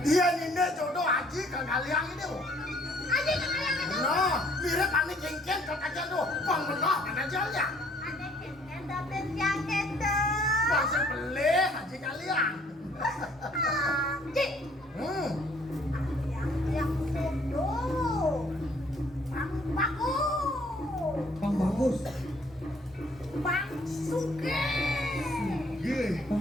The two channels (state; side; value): normal; both; correlation 0.61